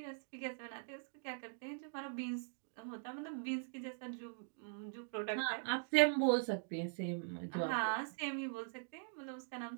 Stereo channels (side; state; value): left; silent; digital silence